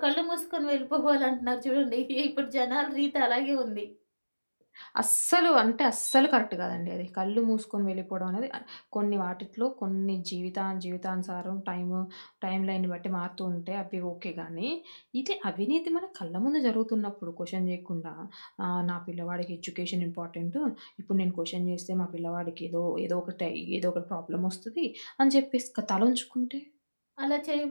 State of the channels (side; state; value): both; inverted; correlation -1.00